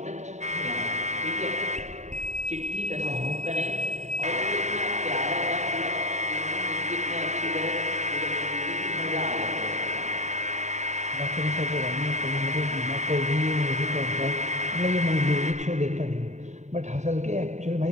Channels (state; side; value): late; left; 0.34 ms